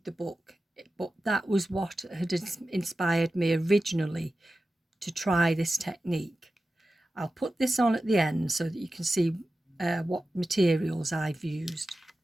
the book, but that was what had inspired me originally to try this technique. I'll put this on at the end so that you can see what materials I've used.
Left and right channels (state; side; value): normal; both; correlation 0.94